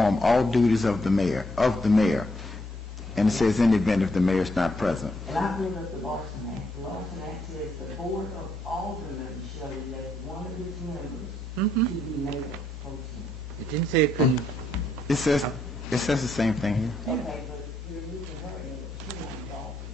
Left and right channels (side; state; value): both; normal; correlation 0.74